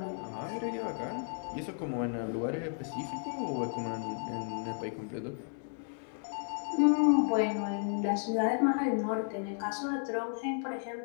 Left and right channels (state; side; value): silent; right; digital silence